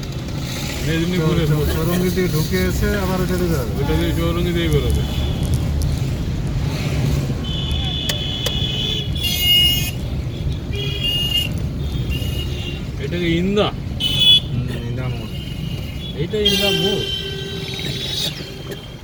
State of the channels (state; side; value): identical; both; correlation 1.00